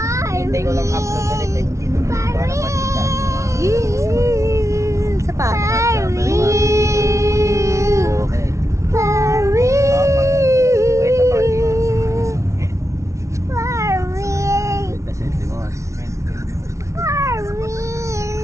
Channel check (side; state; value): left; late; 0.14 ms